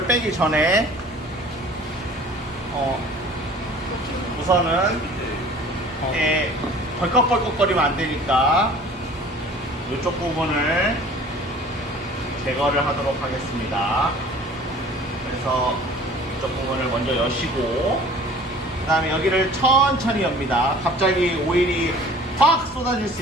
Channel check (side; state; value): both; normal; correlation 0.48